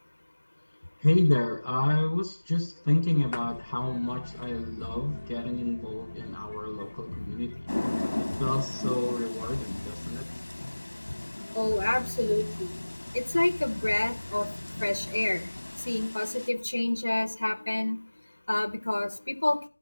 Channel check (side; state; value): both; inverted; correlation -1.00